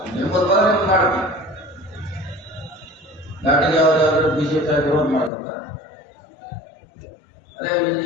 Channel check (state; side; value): drops out; right; at 5.3 s